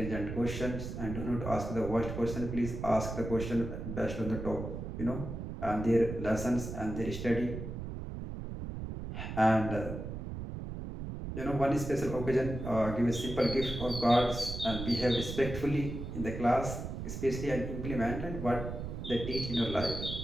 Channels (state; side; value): noise; right; rumble, 6 dB below the sound